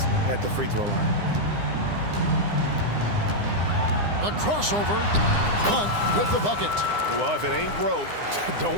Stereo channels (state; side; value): late; left; 9.8 ms